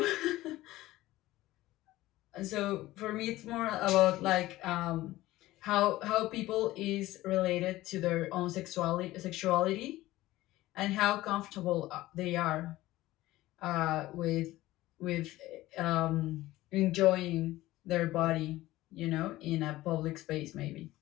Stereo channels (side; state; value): right; quieter; 16.9 dB